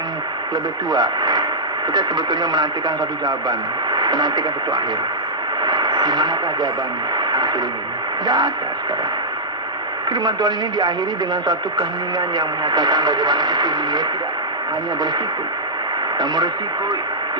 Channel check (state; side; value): normal; both; correlation -0.12